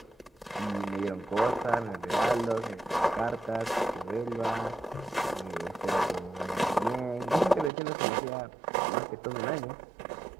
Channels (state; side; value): drops out; left; at 7.7 s